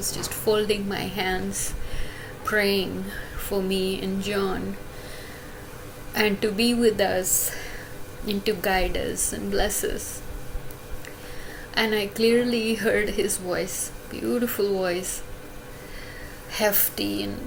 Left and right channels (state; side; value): identical; both; correlation 1.00